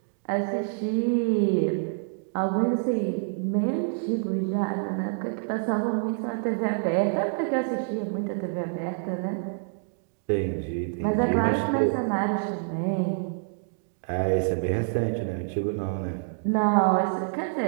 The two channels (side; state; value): left; silent; digital silence